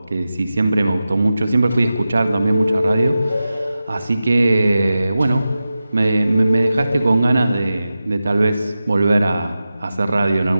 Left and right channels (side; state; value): both; inverted; correlation -0.93